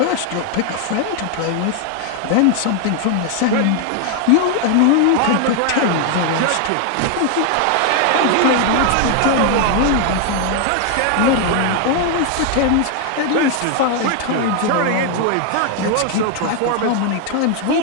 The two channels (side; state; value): both; different; correlation 0.00